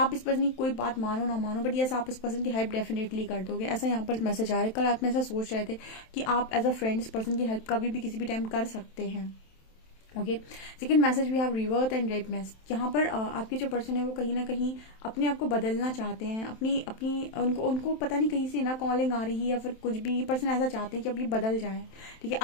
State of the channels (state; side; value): late; right; 27 ms